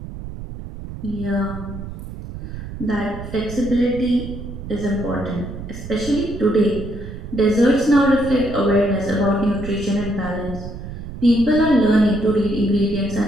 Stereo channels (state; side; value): noise; right; rumble, 10 dB below the sound